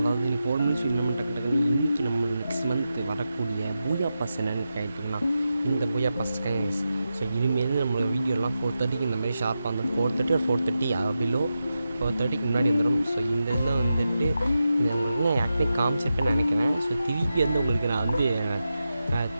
4 மினிட்ஸ் நம்ம டக்கு டக்குன்னு இன்றைக்கி நம்ம நெக்ஸ்ட் மந்த் வரக்கூடிய பூயா பாஸ் என்னென்னு கேட்டிங்கன்னா இந்த பூயா பாஸ் கைஸ். ஸோ இனிமேல் நம்மளோட வீடியோலாம் 4:30க்கு இந்த மாதிரி ஷார்ப்பாக வந்துடும். 4:30 ஒரு 4:30 பிலோ 4:30க்கு முன்னாடி வந்துடும். ஸோ இந்த இதில் வந்துட்டு உங்களுக்கு நான் ஆக்சுவலி காமிச்சிருப்பேன்னு நினைக்கிறேன். ஸோ திருப்பி வந்து உங்களுக்கு நான் வந்து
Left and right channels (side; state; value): both; inverted; correlation -0.90